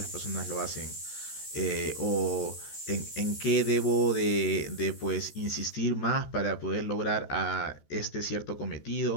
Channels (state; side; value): late; right; 14 ms